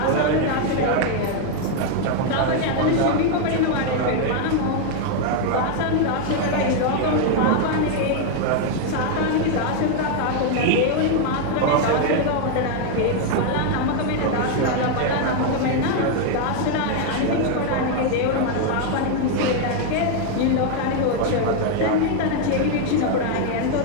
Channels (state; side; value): different; both; correlation 0.00